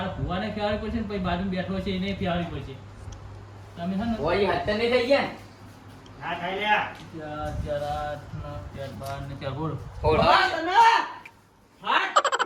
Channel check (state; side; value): identical; both; correlation 1.00